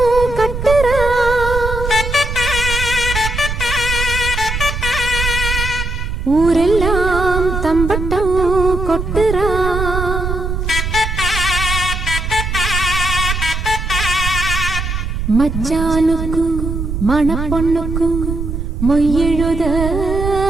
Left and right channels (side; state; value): right; noise; rumble, 3 dB below the sound